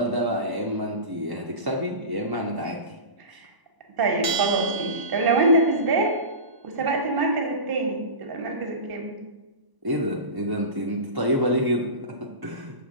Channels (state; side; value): late; left; 1.0 ms